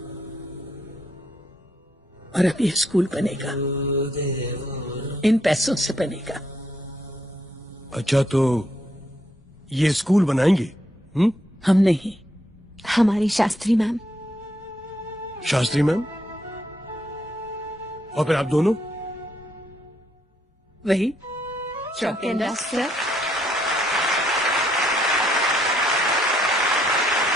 और अब यह स्कूल बनेगा, इन पैसों से बनेगा। अच्छा, तो ये स्कूल बनाएंगे? हम नहीं, हमारी शास्त्री मैम। शास्त्री मैम? और फिर आप दोनों? वही चौक एंड डस्टर।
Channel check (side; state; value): both; normal; correlation 0.74